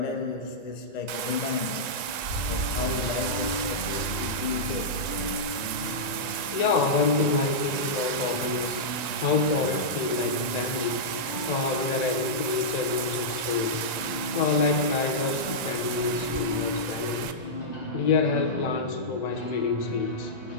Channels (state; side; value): late; right; 1.9 ms